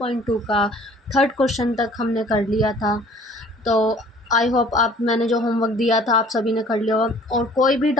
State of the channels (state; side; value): normal; both; correlation 0.53